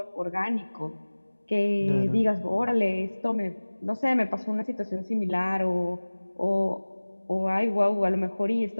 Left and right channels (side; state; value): both; inverted; correlation -1.00